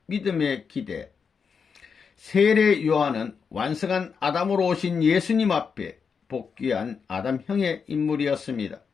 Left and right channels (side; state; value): right; quieter; 6.0 dB